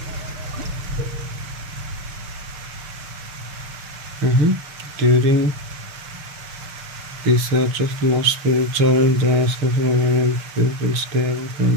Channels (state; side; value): late; left; 6.7 ms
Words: During research of most spiritual people stay away from